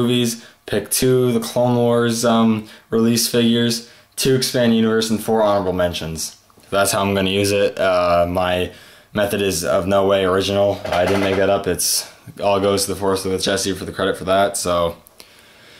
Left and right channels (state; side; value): identical; both; correlation 1.00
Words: pick 2 of the Clone Wars release figures, 2 Expand Universe, and 4 honorable mentions. That's how I'm going to use it. My method is of no way original. I didn't make that up. It's all goes to the Force with Jesse for the credit for that. So